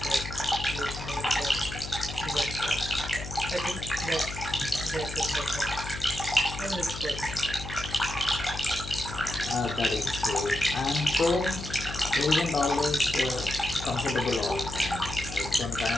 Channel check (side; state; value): left; noise; hum, 10 dB below the sound